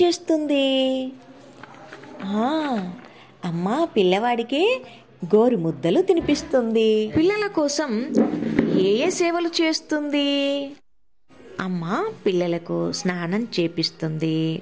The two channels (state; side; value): identical; both; correlation 1.00